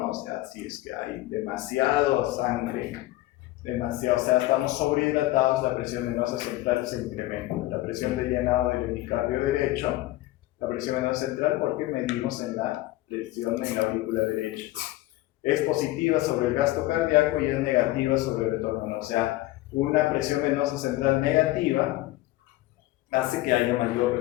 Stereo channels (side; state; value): right; quieter; 17.4 dB